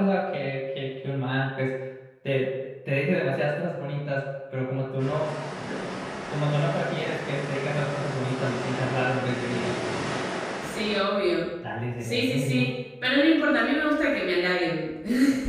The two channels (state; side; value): identical; both; correlation 1.00